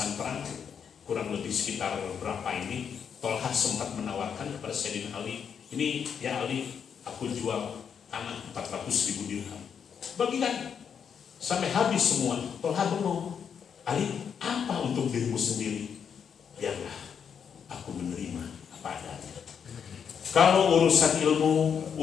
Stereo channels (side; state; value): right; quieter; 7.3 dB